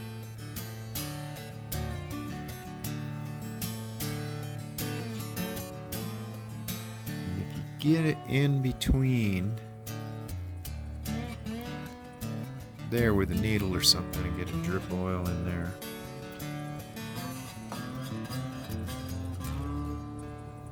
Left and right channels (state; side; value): identical; both; correlation 1.00